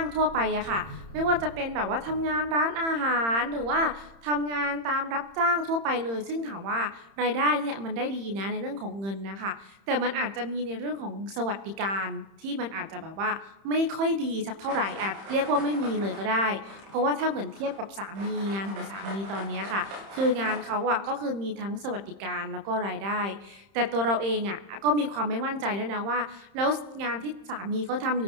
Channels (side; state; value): left; late; 30 ms